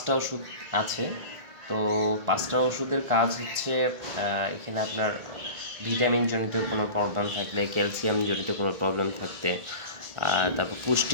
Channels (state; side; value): late; left; 1.8 ms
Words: ওষুধ আছে। তো 5টা ওষুধের কাজ হচ্ছে এখানে আপনার ভিটামিন জনিত কোনো প্রবলেম থাকলে, ক্যালসিয়াম জনিত কোনো প্রবলেম থাকতে, তারপর